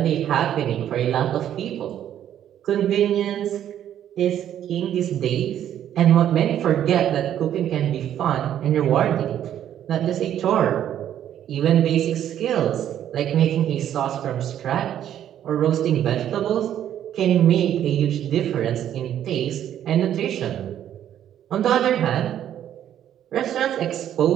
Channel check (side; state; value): left; quieter; 10.7 dB